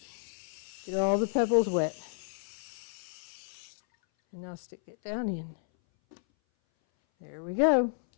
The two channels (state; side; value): silent; right; 57 dB below the other